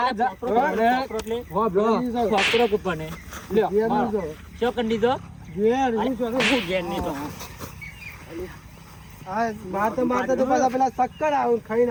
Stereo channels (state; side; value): identical; both; correlation 1.00